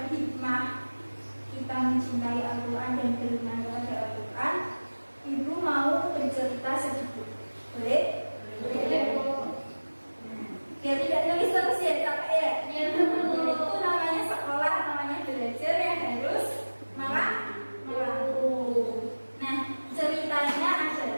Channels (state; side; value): inverted; both; correlation -1.00